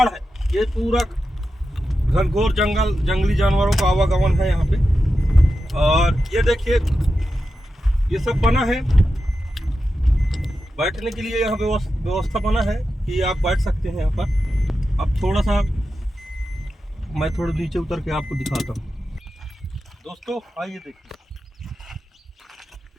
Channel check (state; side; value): normal; both; correlation 0.90